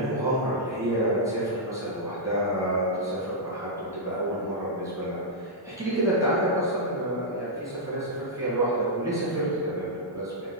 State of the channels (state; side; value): normal; both; correlation -0.08